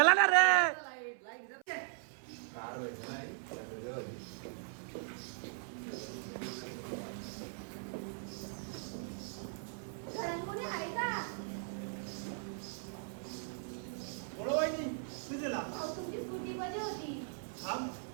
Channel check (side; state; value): left; silent; 52 dB below the other